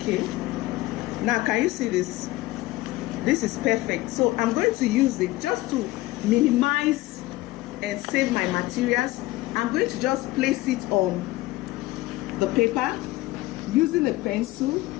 Now, can you see this? This is perfect. So I'm going to use it just to minimize and save my materials. I'm going to just place it on the paper using a pencil,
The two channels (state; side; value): quieter; right; 18.7 dB